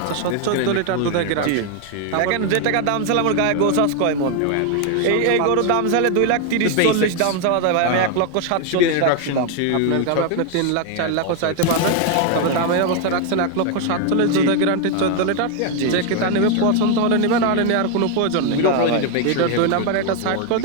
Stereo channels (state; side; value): different; both; correlation 0.01